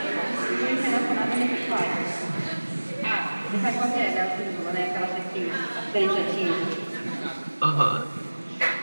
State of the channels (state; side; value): inverted; both; correlation -1.00